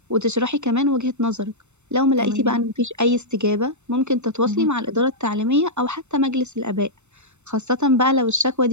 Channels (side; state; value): left; late; 0.82 ms